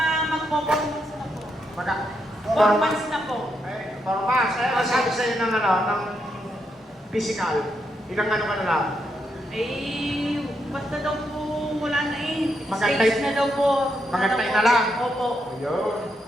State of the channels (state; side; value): normal; both; correlation 0.80